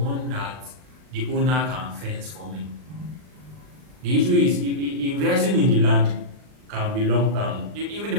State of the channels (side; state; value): left; late; 39 ms